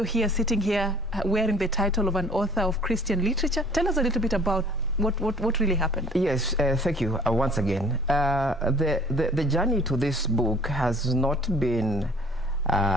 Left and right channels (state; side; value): normal; both; correlation 0.52